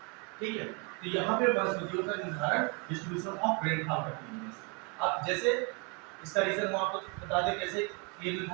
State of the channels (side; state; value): left; quieter; 33.0 dB